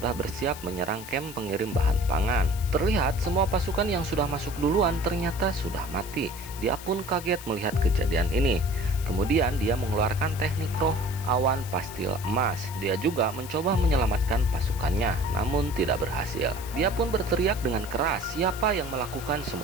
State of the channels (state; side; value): noise; left; hiss, 14 dB below the sound